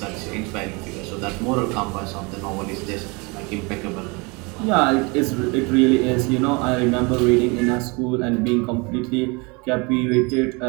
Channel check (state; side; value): quieter; left; 28.5 dB